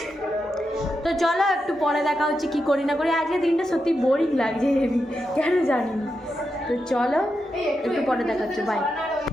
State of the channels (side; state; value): both; normal; correlation 0.87